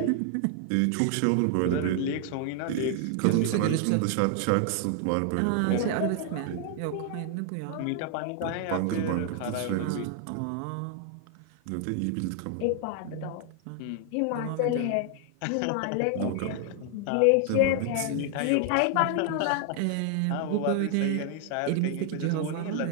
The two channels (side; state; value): both; different; correlation 0.00